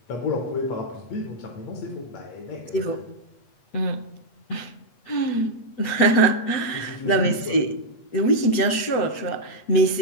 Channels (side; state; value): right; late; 8.2 ms